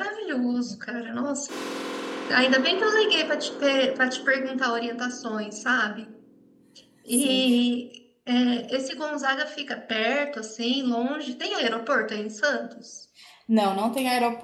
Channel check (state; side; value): identical; both; correlation 1.00